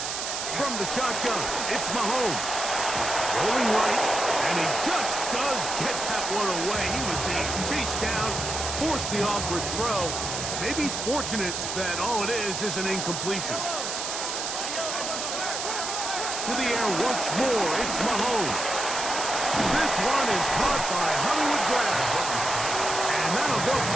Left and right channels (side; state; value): right; noise; hiss, 3 dB below the sound